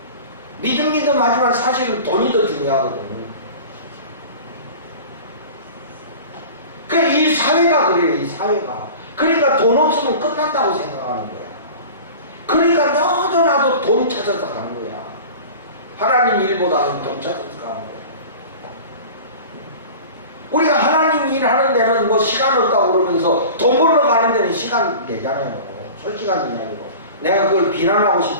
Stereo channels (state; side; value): inverted; both; correlation -0.37